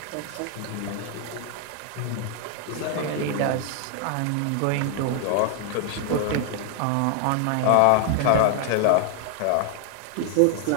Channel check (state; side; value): different; both; correlation 0.00